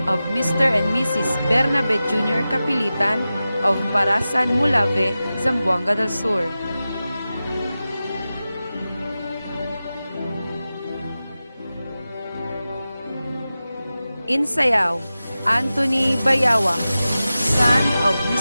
of Mr. and Mrs. Bernabe Jr. Kapilitan of Parasan, Mulave, Zamboanga del Sur. Insayaw, Anthony Bayawa, son of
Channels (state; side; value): inverted; both; correlation -0.94